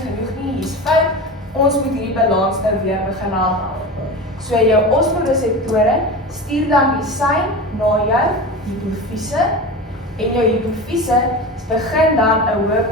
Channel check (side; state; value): both; normal; correlation 0.28